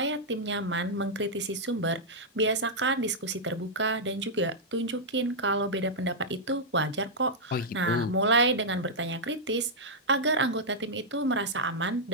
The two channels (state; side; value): normal; both; correlation -0.07